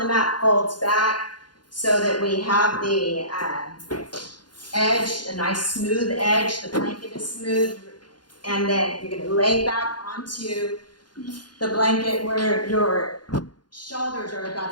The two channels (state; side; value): late; right; 0.70 ms